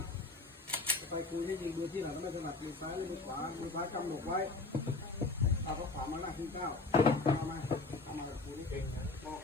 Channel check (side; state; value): right; quieter; 3.6 dB